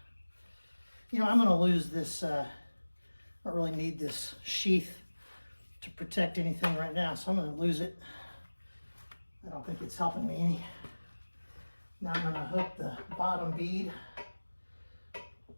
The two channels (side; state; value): both; inverted; correlation -1.00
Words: I'm going to lose this, I don't really need this sheath to protect anything right now, so I'm going to lose it. I don't think it's helping me any. Now I'm going to hook the bottom bead.